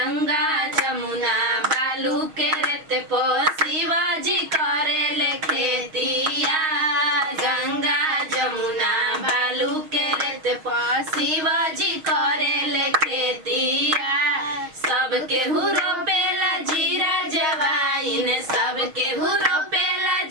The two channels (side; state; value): left; late; 6.4 ms